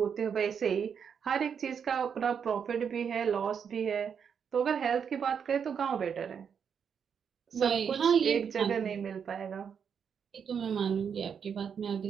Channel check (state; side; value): quieter; left; 7.2 dB